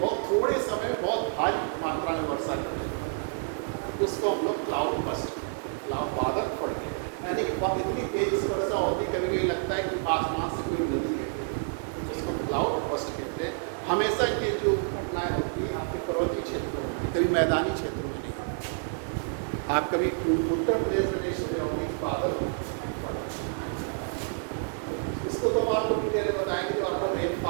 बहुत थोड़े समय में बहुत भारी मात्रा में वर्षा करते हैं, इसको हम लोग क्लाउड बस्ट, क्लाउड बादल फट गए, यानी कि इतनी तेज से वर्षा होती, कभी कभी लगता है कि आसमान से कोई नदी है, उसको क्लाउड बस्ट कहते हैं। हमेशा ये जो घटनाएं होती है आपके पर्वतीय क्षेत्रों में, कभी मैदानी क्षेत्रों में नहीं। आप कभी उत्तर प्रदेश में देखे होंगे बादल, इसको तो हम आपको डिटेल बताएंगे, जो आपको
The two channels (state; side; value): silent; left; 59 dB below the other